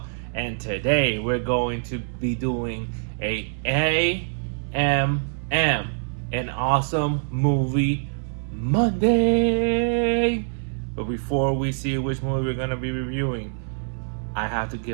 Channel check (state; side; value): silent; left; 62 dB below the other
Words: and today we're going to be doing a AMM, an awesome movie Monday. But before we see which movie we're going to be reviewing, I have to